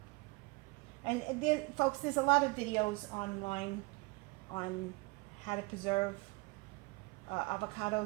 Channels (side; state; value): left; quieter; 26.4 dB